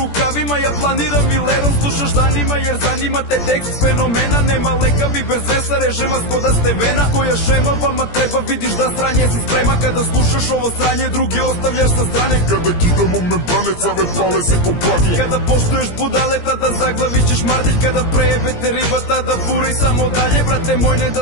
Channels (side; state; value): right; late; 17 ms